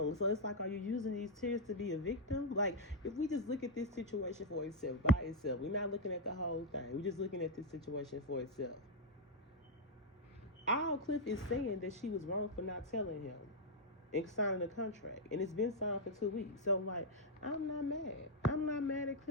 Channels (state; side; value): normal; both; correlation -0.02